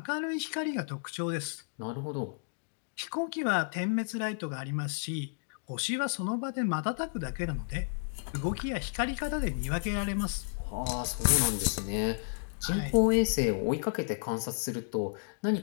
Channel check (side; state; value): right; silent; digital silence